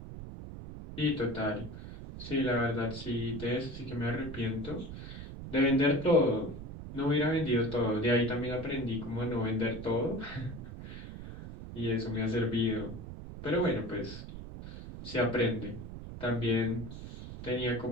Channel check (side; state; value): right; noise; rumble, 11 dB below the sound